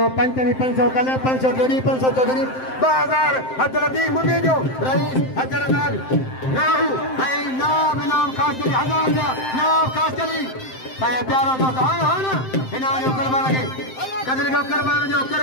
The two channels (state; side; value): late; right; 7.7 ms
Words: 500 कल 500 जोड़ी 500 चौधरी 2000 अब्दुल लतीफ मुझे जो रईस अब्दुल्रज़ाक राहू नाम इनाम खास चली 1000 रुपया नाम खास चली प्यारो दोस्त हाँ ना इनाम जो करवा लगे कदर को करवान जो